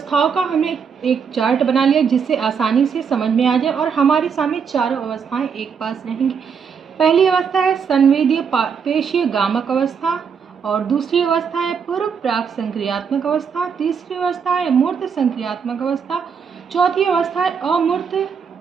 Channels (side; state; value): left; quieter; 6.5 dB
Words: का हमने एक चार्ट बना लिया जिससे आसानी से समझ में आ जाए, और हमारे सामने चारों अवस्थाएं एक पास रहेंगी। पहली अवस्था है संवेदीय पेशीय गामक अवस्था, और दूसरी अवस्था है पूर्व प्राक संक्रियात्मक अवस्था, तीसरी अवस्था है मूर्त संक्रियात्मक अवस्था, चौथी अवस्था है अमूर्त